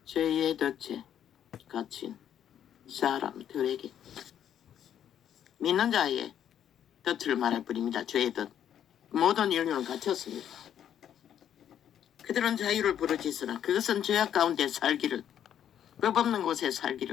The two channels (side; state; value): right; quieter; 9.8 dB